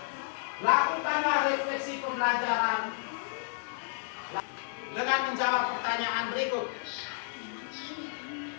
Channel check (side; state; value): right; silent; digital silence